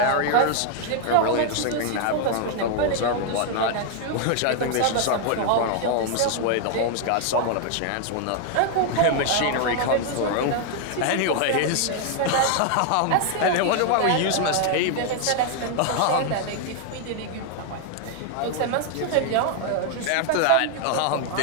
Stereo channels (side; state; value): both; different; correlation 0.00